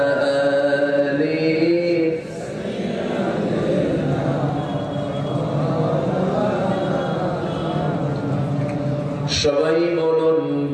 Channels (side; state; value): both; identical; correlation 1.00